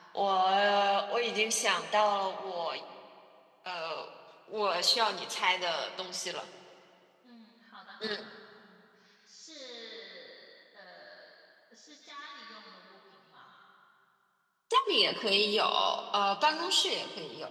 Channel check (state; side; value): identical; both; correlation 1.00